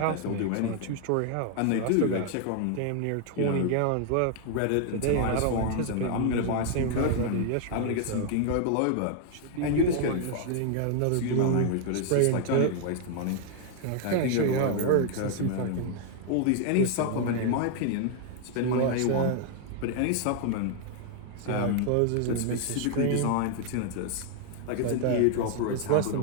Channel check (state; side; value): different; both; correlation 0.00